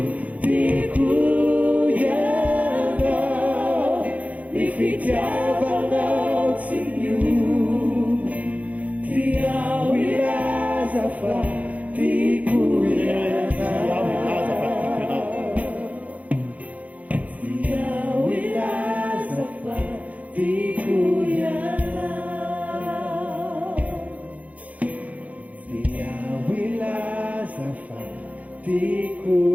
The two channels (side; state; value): left; late; 0.070 ms